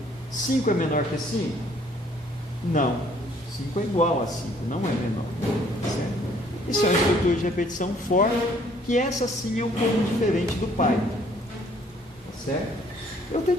5 é menor que 5? Não. 5 é igual a 5, não é menor. Certo? Isso é uma estrutura de repetição for, que essa sim é um pouco diferente do Python. Tá certo? Eu até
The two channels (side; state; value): both; normal; correlation 0.61